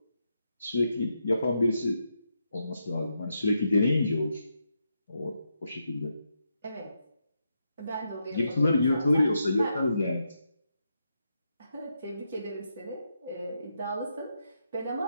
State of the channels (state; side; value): inverted; both; correlation -0.82